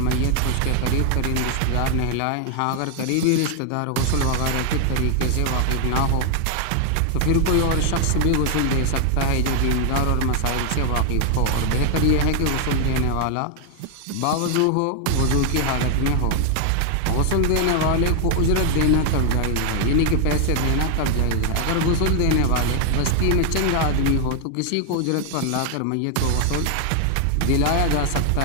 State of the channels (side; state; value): both; different; correlation 0.00